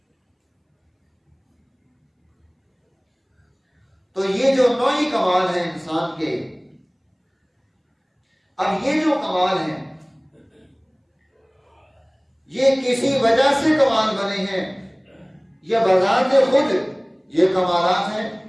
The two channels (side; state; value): both; identical; correlation 1.00